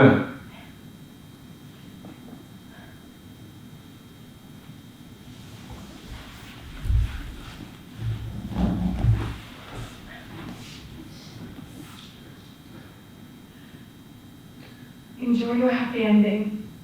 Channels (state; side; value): identical; both; correlation 1.00